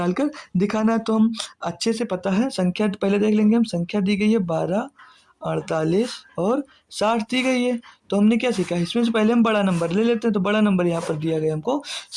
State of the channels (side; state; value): both; identical; correlation 1.00